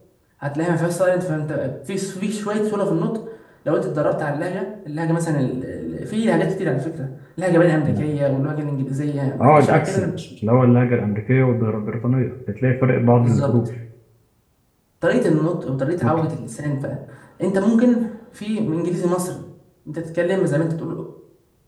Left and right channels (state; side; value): identical; both; correlation 1.00